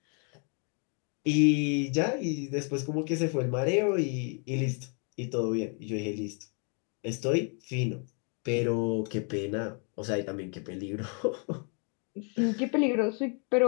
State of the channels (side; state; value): right; quieter; 39.6 dB